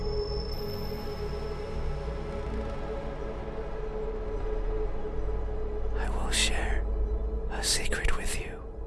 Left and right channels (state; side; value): identical; both; correlation 1.00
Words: I will share a secret with you.